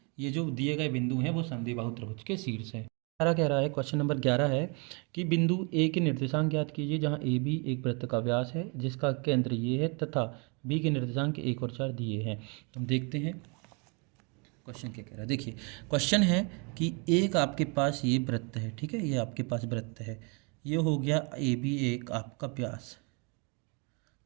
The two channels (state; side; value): quieter; left; 33.0 dB